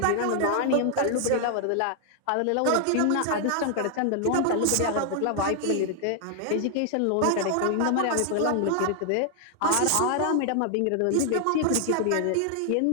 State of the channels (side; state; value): both; different; correlation 0.00